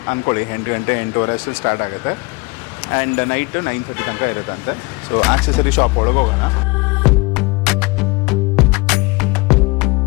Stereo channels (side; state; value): right; quieter; 25.6 dB